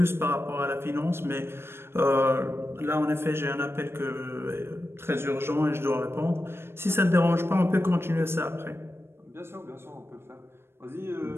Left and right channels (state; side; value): late; left; 0.12 ms